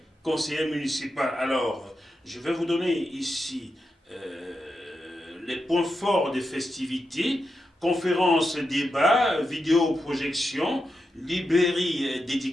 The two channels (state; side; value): normal; both; correlation 0.87